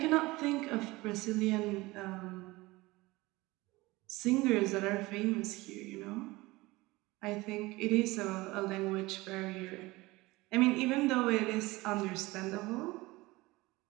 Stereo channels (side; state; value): left; quieter; 21.0 dB